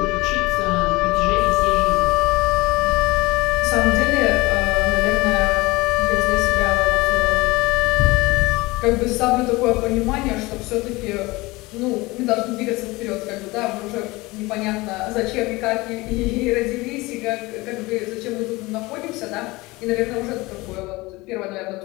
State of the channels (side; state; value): right; quieter; 21.8 dB